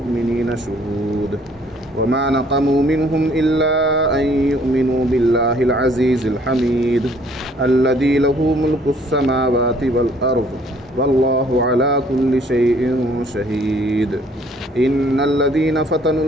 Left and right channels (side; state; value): both; normal; correlation 0.60